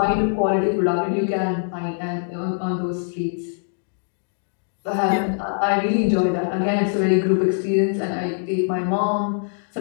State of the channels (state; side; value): silent; right; digital silence